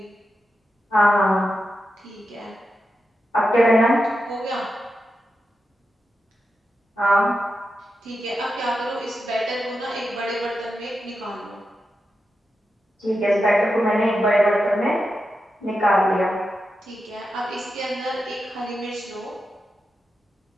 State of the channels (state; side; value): normal; both; correlation 0.89